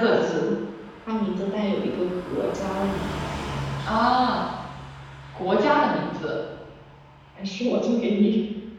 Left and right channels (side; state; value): both; identical; correlation 1.00